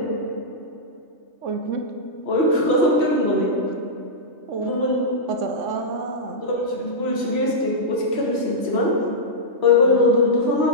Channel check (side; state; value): left; late; 3.2 ms